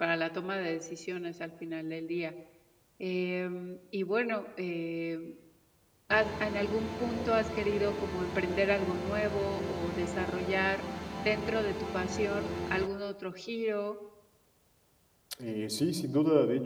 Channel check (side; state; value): both; identical; correlation 1.00